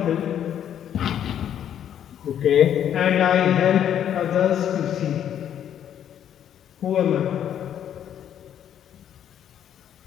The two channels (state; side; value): quieter; right; 9.8 dB